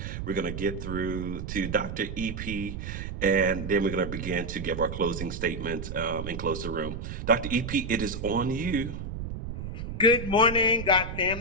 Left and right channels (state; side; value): noise; right; rumble, 7 dB below the sound